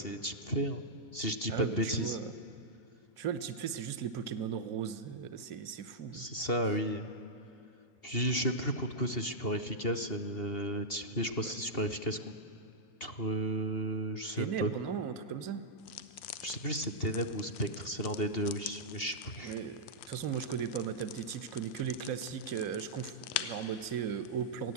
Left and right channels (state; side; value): late; right; 2.7 ms